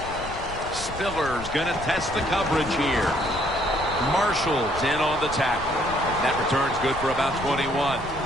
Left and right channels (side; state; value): left; noise; rumble, 12 dB below the sound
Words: Spiller's going to test the coverage here. Marshall's in on the tackle. That return's good for about 21.